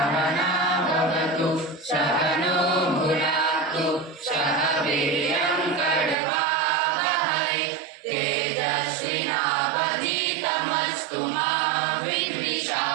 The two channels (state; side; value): drops out; left; at 6.2 s